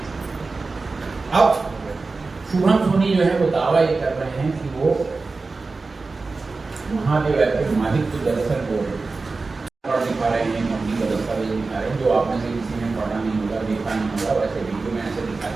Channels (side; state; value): left; quieter; 3.9 dB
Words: अब शुभम सोनी जो है वो दावा ये कर रहे हैं कि वो महादेव ऐप के मालिक को दरअसल वो दिखा रहे हैं, कंपनी का दस्तावेज दिखा रहे हैं, जो आप में से किसी ने पढ़ा नहीं होगा, देखा नहीं होगा, वैसे वीडियो में ऐसे दिखा